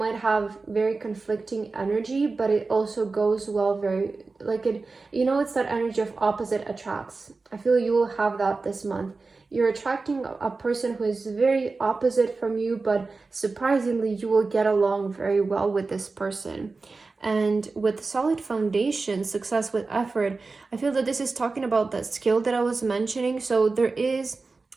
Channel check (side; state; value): left; quieter; 3.9 dB